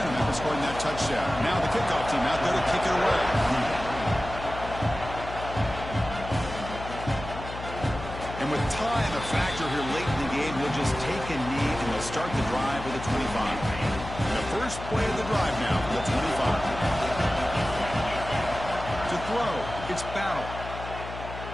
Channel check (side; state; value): left; noise; hum, 10 dB below the sound